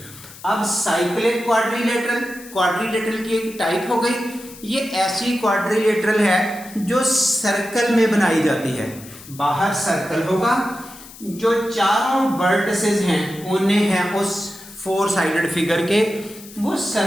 अब साइक्लिक क्वाड्रिलेटरल की एक टाइप हो गई। ये ऐसी क्वाड्रिलेटरल है जो सर्कल में बनाई जाती है। बाहर सर्कल होगा, जो चारों वर्टिसेस हैं, कोने हैं उस 4 साइडेड फिगर के, वो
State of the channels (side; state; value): left; noise; hiss, 18 dB below the sound